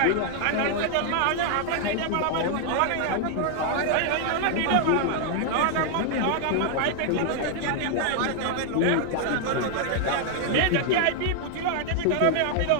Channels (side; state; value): both; different; correlation 0.00